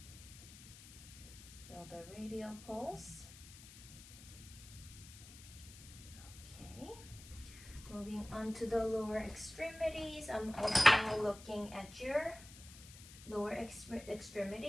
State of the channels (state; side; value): noise; left; hiss, 17 dB below the sound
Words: Feel the radial pulse. Okay. Moving on to the lower extremities. I'm also looking at your lower